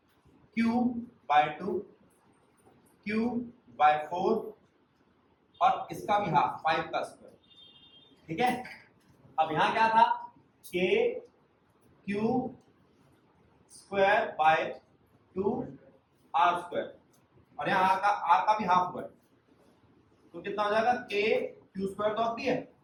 Q/2 Q/4 और इसका भी हाफ 5 का स्क्वायर। ठीक है, अब यहां क्या था? K Q square by 2 R square, और यहाँ R का भी हाफ हुआ है, तो कितना हो जाएगा? K Q स्क्वायर तो अब भी है,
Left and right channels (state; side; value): identical; both; correlation 1.00